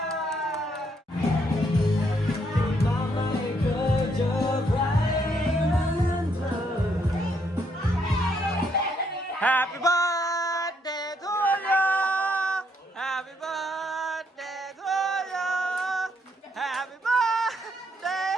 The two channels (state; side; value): normal; both; correlation 0.73